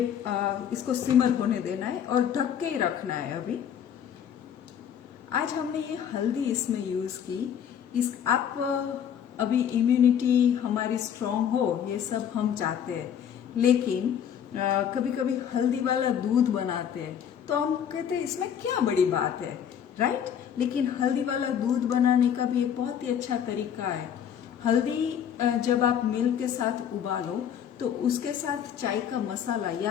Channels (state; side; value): quieter; right; 8.8 dB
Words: इसको सिमर होने देना है और ढक के ही रखना है। अभी आज हमने ये हल्दी इसमें यूज की। आप अभी इम्यूनिटी हमारी स्ट्रांग हो, ये सब हम चाहते हैं, लेकिन कभी कभी हल्दी वाला दूध बनाते हैं तो हम कहते हैं इसमें क्या बड़ी बात है, राइट? लेकिन हल्दी वाला दूध बनाने का भी एक बहुत ही अच्छा तरीका है। हल्दी जब आप मिल्क के साथ उबालो तो उसके साथ चाय का मसाला